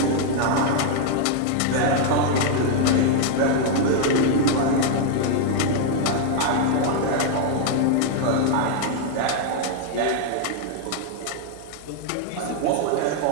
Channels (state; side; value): different; both; correlation 0.00